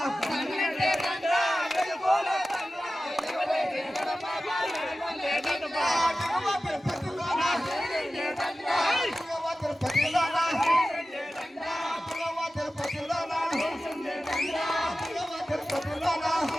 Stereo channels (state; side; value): normal; both; correlation 0.95